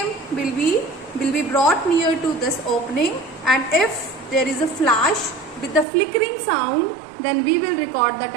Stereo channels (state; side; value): drops out; left; at 5.9 s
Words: will be brought near to this opening, and if there is a flash with the flickering sound, then we will record the